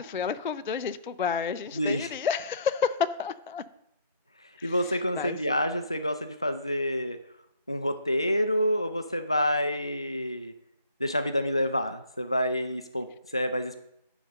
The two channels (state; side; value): inverted; both; correlation -0.59